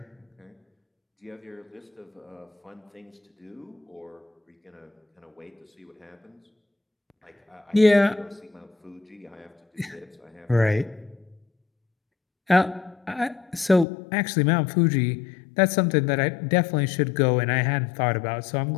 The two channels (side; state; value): right; drops out; at 13.9 s